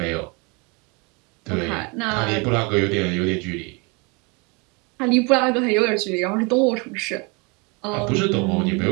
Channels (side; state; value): left; quieter; 29.6 dB